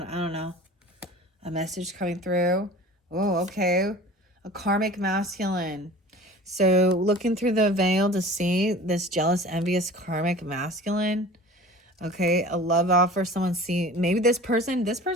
I don't know. A message coming through. Oh, okay. A karmic masculine. So looking through the veil to see this jealous, envious, karmic masculine. Okay, a love offer. Someone see, maybe this person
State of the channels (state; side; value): normal; both; correlation 0.41